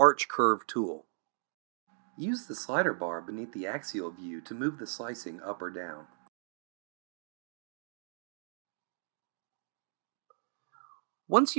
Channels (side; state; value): left; silent; digital silence